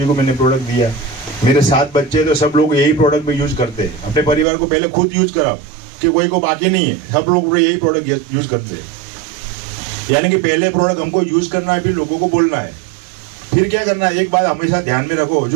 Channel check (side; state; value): left; drops out; at 4.5 s